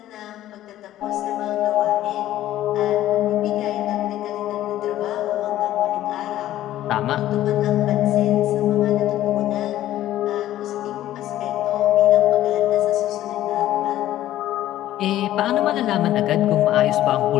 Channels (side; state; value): right; quieter; 13.5 dB